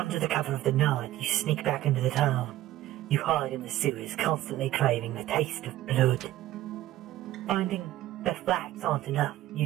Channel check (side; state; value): left; quieter; 14.8 dB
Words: the cover of the night, you sneak back into the town. You hide in the sewers, constantly craving the taste of blood. Finding that facts aren't enough, you